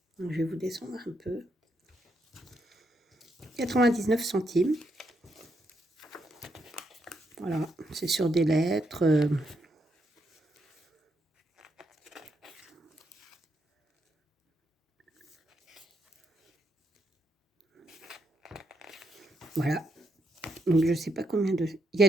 Donc, je vais vous descendre un peu. 99 centimes. Voilà, c'est sur des lettres. Voilà. Donc, je ne sais pas combien de... Il y a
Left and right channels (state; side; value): normal; both; correlation 0.79